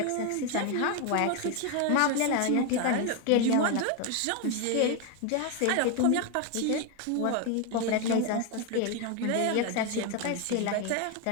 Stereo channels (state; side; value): different; both; correlation 0.01